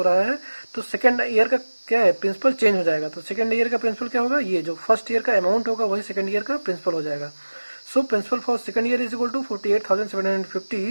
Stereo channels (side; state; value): both; inverted; correlation -1.00